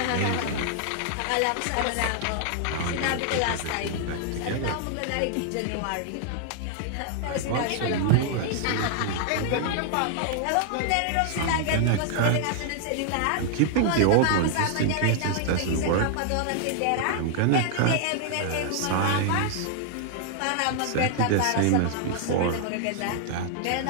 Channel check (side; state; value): both; different; correlation 0.00